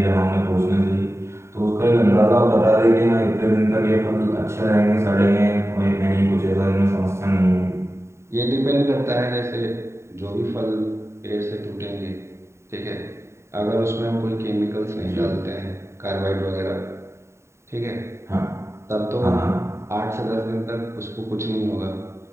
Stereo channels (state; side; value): late; left; 0.13 ms